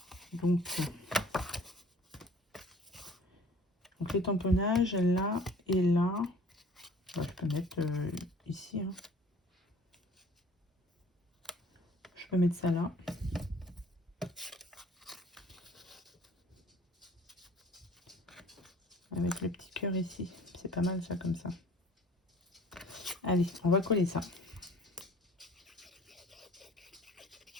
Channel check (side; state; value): both; normal; correlation 0.50